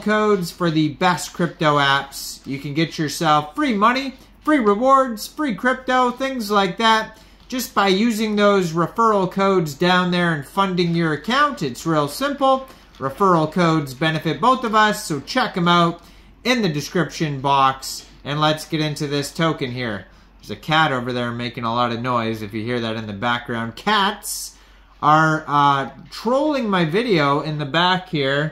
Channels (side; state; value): both; identical; correlation 1.00